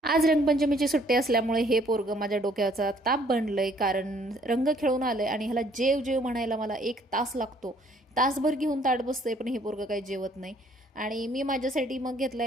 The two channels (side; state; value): both; normal; correlation 0.62